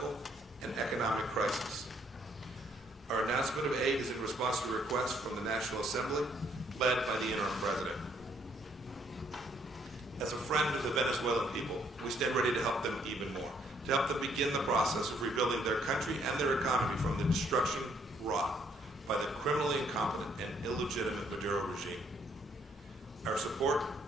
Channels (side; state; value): both; normal; correlation 0.68